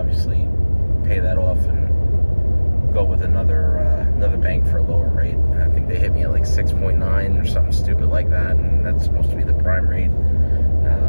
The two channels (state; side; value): inverted; both; correlation -1.00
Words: pay that off and go with another bank for a lower rate. I think they hit me at like 6.9 or something stupid like that, and that's supposed to be the prime rate.